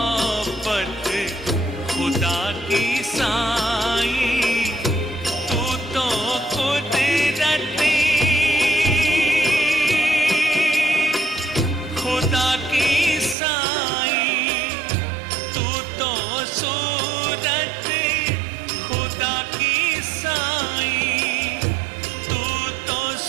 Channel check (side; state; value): left; drops out; at 13.4 s